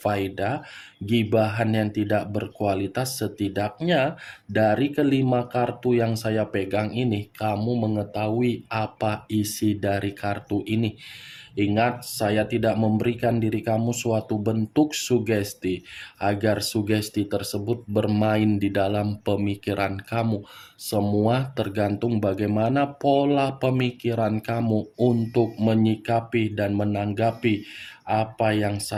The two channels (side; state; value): both; identical; correlation 1.00